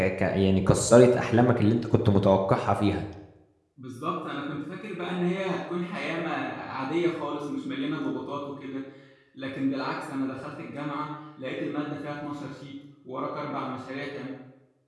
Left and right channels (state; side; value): identical; both; correlation 1.00